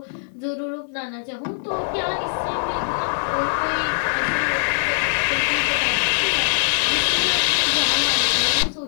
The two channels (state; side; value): silent; right; digital silence